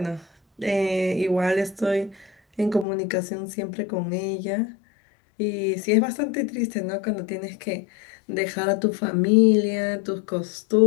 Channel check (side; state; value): right; drops out; at 2.9 s